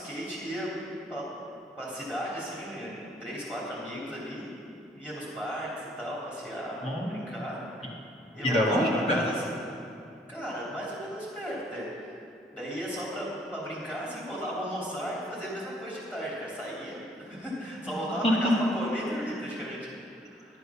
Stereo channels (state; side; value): normal; both; correlation 0.61